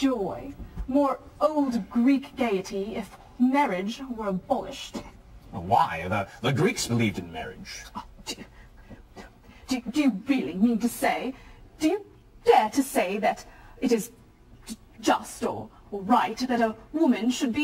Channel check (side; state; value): both; identical; correlation 1.00